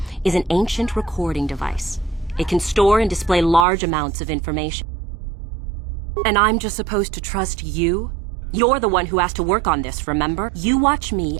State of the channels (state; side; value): drops out; left; at 3.7 s